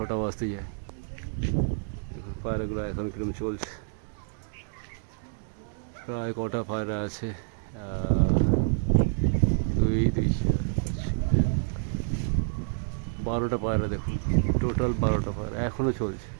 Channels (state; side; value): silent; left; digital silence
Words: বাজতে যায়, দেখুন পায়রাগুলো এখন কিরকম চলছে। প্রায় কটা পায়রা আছে? 12টা পায়রা, দেখুন টোটাল 12টা পায়রা এখনও চলছে।